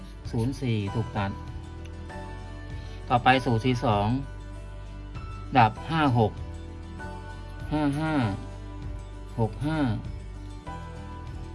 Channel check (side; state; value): both; identical; correlation 1.00